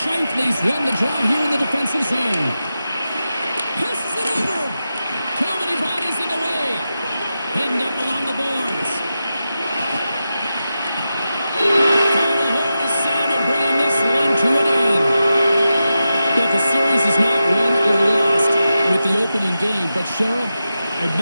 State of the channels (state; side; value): inverted; both; correlation -0.91